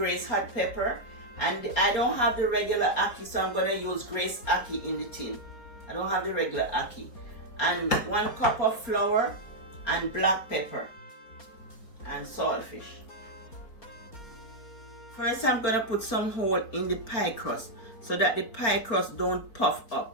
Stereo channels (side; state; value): right; late; 4.3 ms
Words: hot pepper. And I don't have the regular ackee, so I'm going to use Grace ackee in the tin. I don't have the regular ackee. And 1 cup of flour and black pepper and saltfish. First, I'm going to put some hole in the pie crust so that the pie crust don't puff